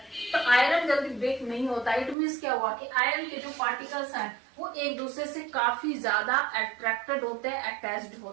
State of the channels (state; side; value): drops out; left; at 2.1 s